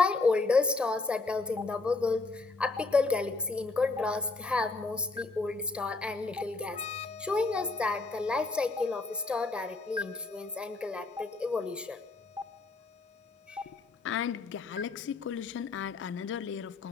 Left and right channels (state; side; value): quieter; right; 3.6 dB